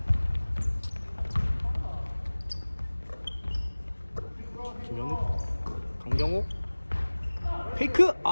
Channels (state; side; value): inverted; both; correlation -1.00